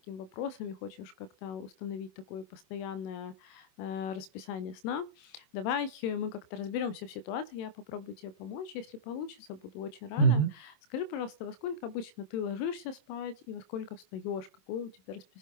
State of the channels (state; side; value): late; right; 27 ms